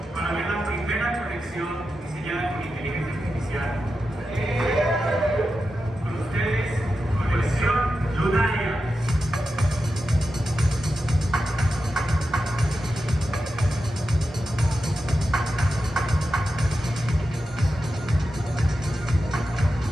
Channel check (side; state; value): both; normal; correlation 0.90